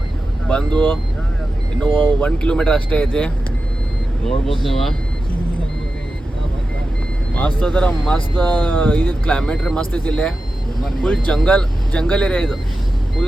ಬಂದು ಇನ್ನೂ 1 kilometer ಅಷ್ಟೇ ಐತಿ. ನೋಡ್ಬೋದು ನೀವು, ಮಸ್ತ್ ಅದರ ಮಸ್ತ್ ಇದು ಕ್ಲೈಮೇಟ್ ರೀ, ಮಸ್ತ್ ಐತಿ ಇಲ್ಲೇ. ಫುಲ್ ಜಂಗಲ್ ಏರಿಯಾ ಇದು.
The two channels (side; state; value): both; normal; correlation 0.92